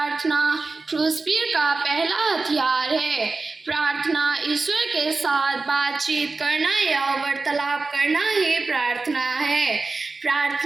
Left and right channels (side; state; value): left; quieter; 3.8 dB